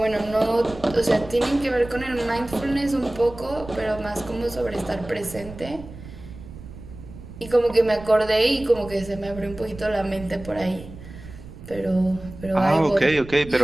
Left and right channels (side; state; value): right; noise; rumble, 15 dB below the sound